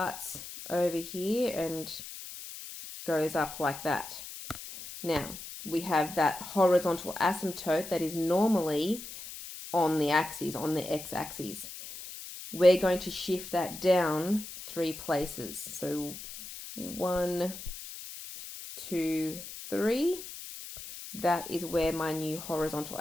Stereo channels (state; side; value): noise; left; hiss, 11 dB below the sound